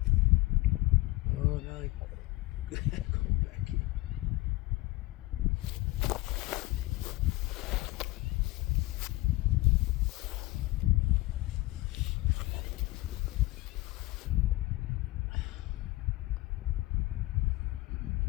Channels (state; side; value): quieter; right; 20.2 dB